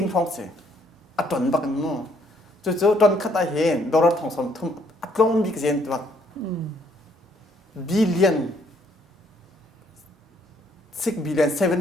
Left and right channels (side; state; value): both; normal; correlation 0.66